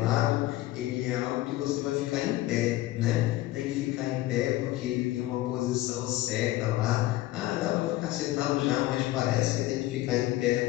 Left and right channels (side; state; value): right; quieter; 16.4 dB